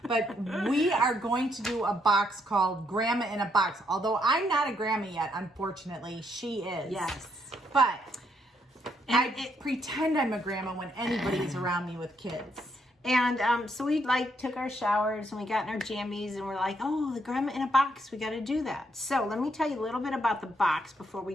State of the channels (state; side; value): normal; both; correlation 0.74